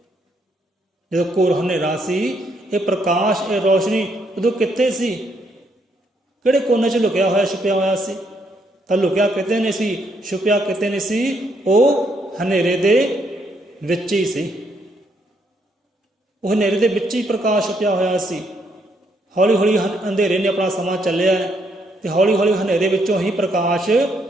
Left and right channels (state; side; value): normal; both; correlation 0.74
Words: ਜਦੋਂ ਘੋਰ ਹਨੇਰਾ ਸੀ, ਇਹ ਪ੍ਰਕਾਸ਼, ਇਹ ਰੋਸ਼ਨੀ ਉਦੋਂ ਕਿੱਥੇ ਸੀ? ਕਿਹੜੇ ਕੋਨੇ 'ਚ ਲੁਕਿਆ ਹੋਇਆ, ਛੁਪਿਆ ਹੋਇਆ ਸੀ? ਤਾਂ ਲੁਕਿਆ ਕਿਤੇ ਨਹੀਂ ਸੀ, ਛੁਪਿਆ ਕਿਤੇ ਨਹੀਂ ਸੀ, ਉਹ ਹਨੇਰੇ ਦੇ ਵਿੱਚ ਹੀ ਸੀ। ਉਹ ਹਨੇਰੇ ਦੇ ਵਿੱਚ ਹੀ ਪ੍ਰਕਾਸ਼ ਛੁਪਿਆ ਹੋਇਆ ਸੀ। ਹੌਲੀ ਹੌਲੀ ਅੰਧੇਰੇ ਨੇ ਆਪਣਾ ਸਮਾਂ ਚੱਲਿਆ ਅਤੇ ਹੌਲੀ ਹੌਲੀ ਹਨੇਰੇ ਵਿੱਚੋਂ ਹੀ ਪ੍ਰਕਾਸ਼